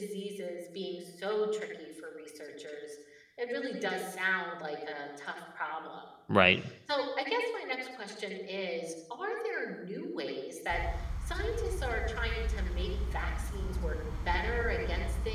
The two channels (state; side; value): identical; both; correlation 1.00